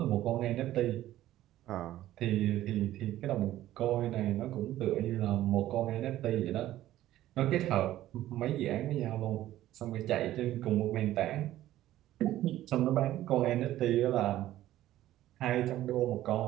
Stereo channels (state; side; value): quieter; left; 14.1 dB